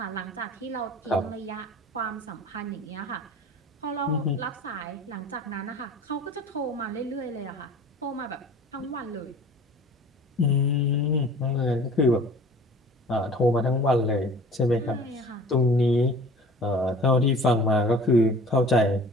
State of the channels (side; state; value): both; normal; correlation 0.44